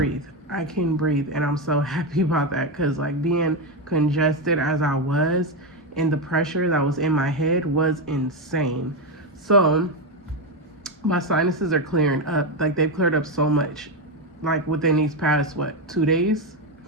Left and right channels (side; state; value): both; normal; correlation 0.10